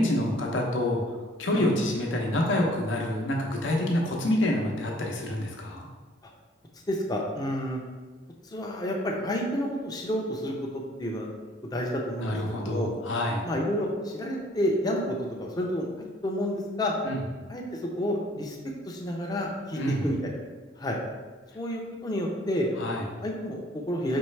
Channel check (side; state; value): both; normal; correlation 0.58